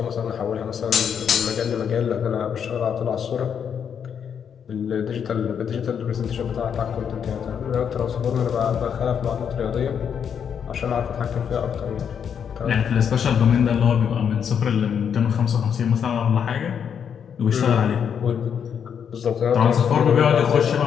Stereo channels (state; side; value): quieter; right; 7.7 dB